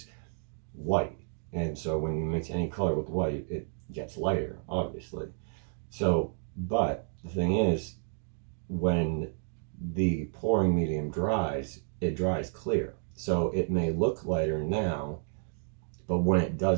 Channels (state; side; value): silent; left; 57 dB below the other